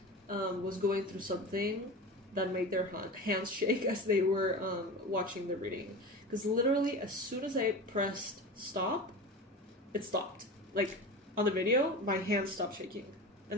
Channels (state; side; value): normal; both; correlation 0.30